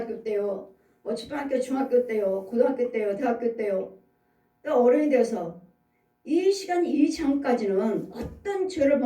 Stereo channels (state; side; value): identical; both; correlation 1.00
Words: 때요, 뭐 초등학교 중학교 때요, 고등학교 때요, 대학교 때요, 또 어른이 돼서 이 시간 이 장까지는 어떤 죄를